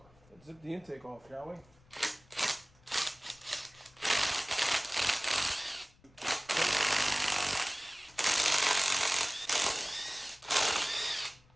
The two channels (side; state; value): left; noise; rumble, 28 dB below the sound